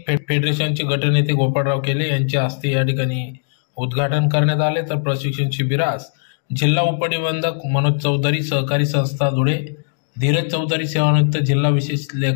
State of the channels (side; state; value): right; silent; digital silence